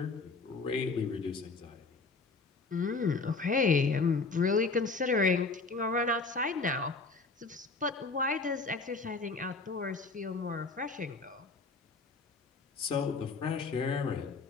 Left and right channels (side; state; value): right; quieter; 4.0 dB